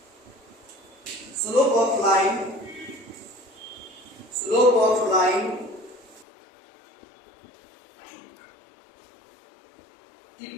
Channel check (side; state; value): right; drops out; at 6.2 s